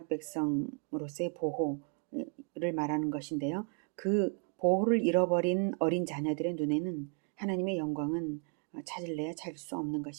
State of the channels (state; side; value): quieter; left; 37.6 dB